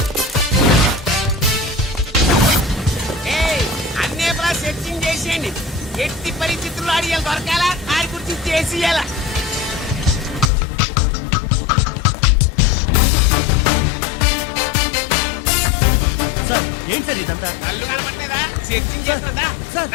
అన్నే సెర్చింగ్ చేసేయండి. ఎట్టి పరిస్థితుల్లో అడిగాలి దొరకాలా, ఆడి గురించి చేసేయాలా. సార్ ఏంటి సార్ ఇదంతా? కళ్ళు కనపడలేదా? సెర్చింగ్ చేస్తున్నదా? సార్.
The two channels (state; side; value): drops out; right; at 10.5 s